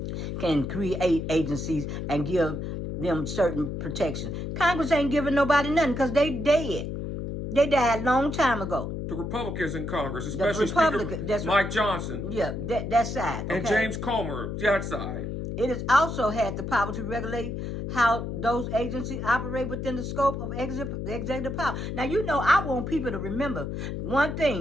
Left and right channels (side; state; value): left; noise; hum, 5 dB below the sound